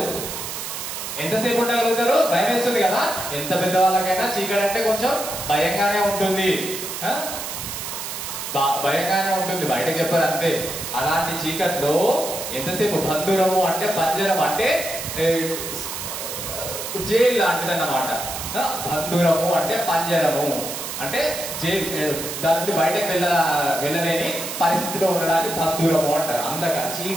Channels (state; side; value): noise; right; hiss, 6 dB below the sound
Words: ఎంతసేపు ఉండగలుగుతారు? భయం వేస్తుంది కదా. ఎంత పెద్దవాళ్ళకైనా చీకటి అంటే కొంచెం భయంగానే ఉంటుంది, భయంగానే ఉంటుంది, బయటకు చెప్పారు అంతే. అలాంటి చీకట్లో ఎంతసేపు? బంధురము అంటే పంజరం అంటే జైలు లాంటిది అన్నమాట. బంధురము అంటే పంజరము అంటే దాని నుండి బయటకు వెళ్ళలేని పరిస్థితిలో ఉండడానికి బంధూరము అంటారు. అందక